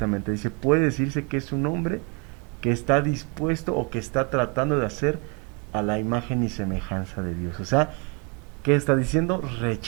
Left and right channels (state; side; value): quieter; left; 33.1 dB